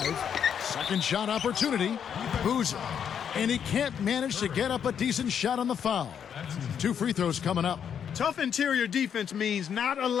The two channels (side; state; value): right; quieter; 8.1 dB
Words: Second shot opportunity. Boozer. And he can't manage to get up a decent shot on the foul. 2 free throws coming up. Tough interior defense means not